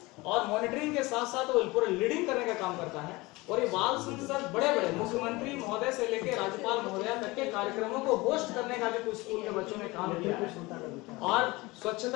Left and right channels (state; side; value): quieter; right; 22.4 dB